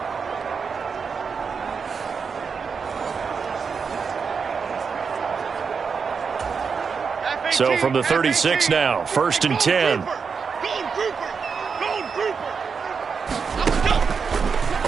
So from the 36 now, 1st and 10.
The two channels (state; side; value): quieter; left; 5.7 dB